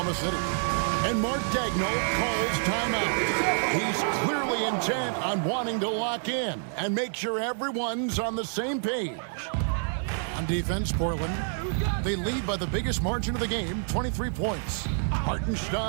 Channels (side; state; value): left; silent; digital silence